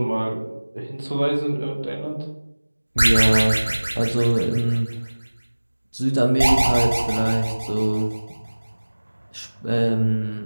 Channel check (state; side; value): inverted; both; correlation -1.00